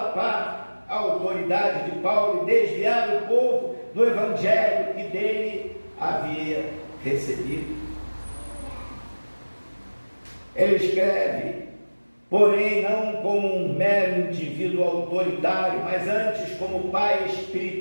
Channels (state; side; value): inverted; both; correlation -1.00